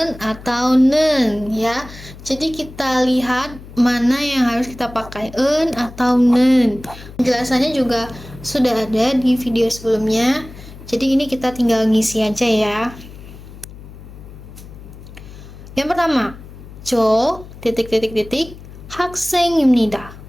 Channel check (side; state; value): left; noise; hum, 16 dB below the sound